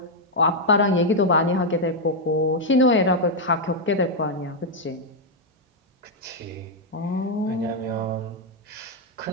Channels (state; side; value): normal; both; correlation -0.01